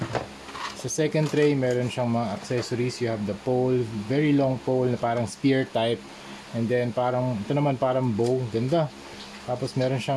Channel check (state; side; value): identical; both; correlation 1.00